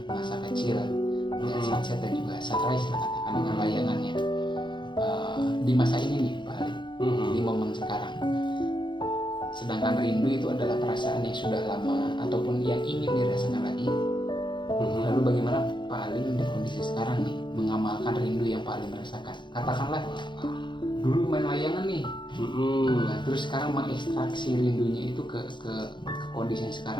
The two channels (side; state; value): right; late; 0.23 ms